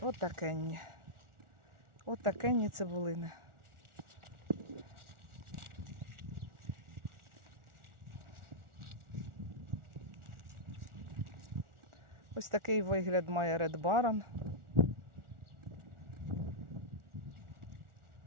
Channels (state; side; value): late; left; 1.4 ms